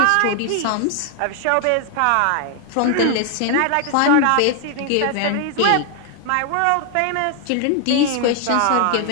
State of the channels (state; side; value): different; both; correlation 0.00